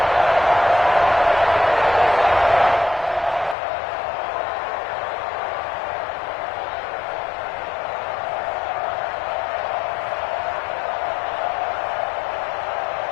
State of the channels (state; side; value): drops out; right; at 3.6 s